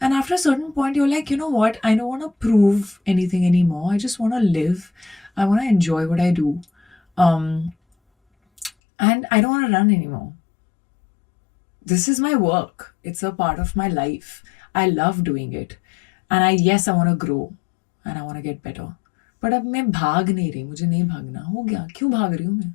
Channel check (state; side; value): drops out; right; at 8.7 s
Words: And after a certain point, you're like, you know what? I don't want to prove anything anymore. I just want to live. I want to enjoy what I do. And I don't want to run anymore. This is my work. It's a part of my life. I love doing it. and I want to grow and I want to get better. But अब मैं भाग नहीं रही, मुझे नहीं भागना, हो गया, क्यों भाग रही हूँ मैं?